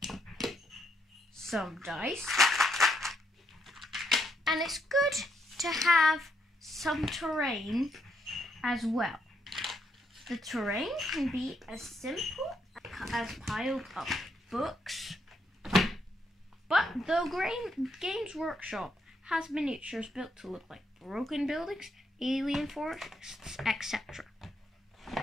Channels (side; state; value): both; normal; correlation 0.76